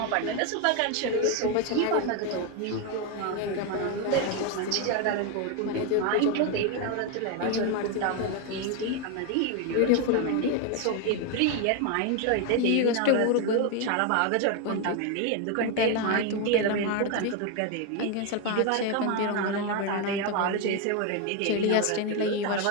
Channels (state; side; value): different; both; correlation 0.02